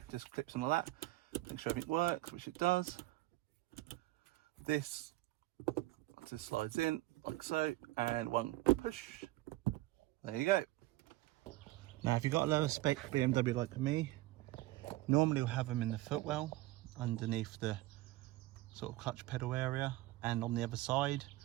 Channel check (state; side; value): quieter; left; 17.7 dB